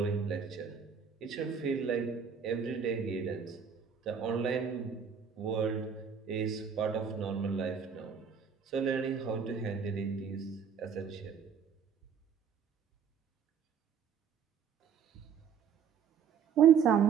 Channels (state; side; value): quieter; left; 7.0 dB